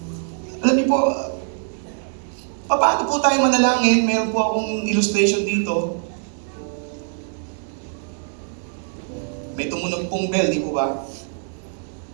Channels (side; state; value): left; silent; digital silence